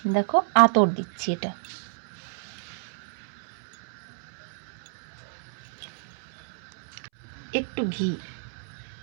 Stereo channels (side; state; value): left; silent; 58 dB below the other